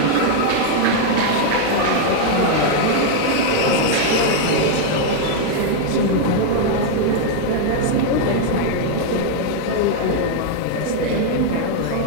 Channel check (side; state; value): both; different; correlation 0.00